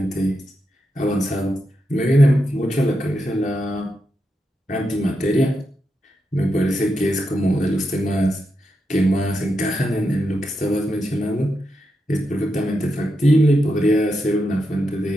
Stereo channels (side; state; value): both; normal; correlation 0.85